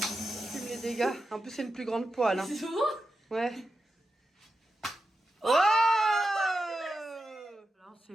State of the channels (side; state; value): both; normal; correlation 0.89